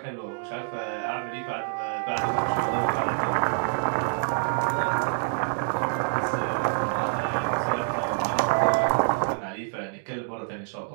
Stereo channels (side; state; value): left; silent; digital silence